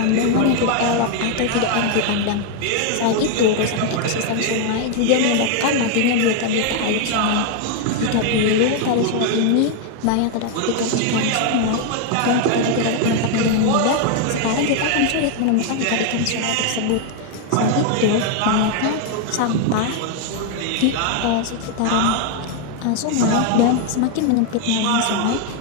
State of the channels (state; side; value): different; both; correlation 0.01